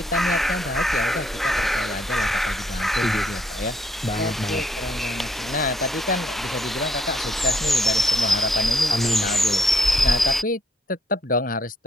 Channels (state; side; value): normal; both; correlation 0.70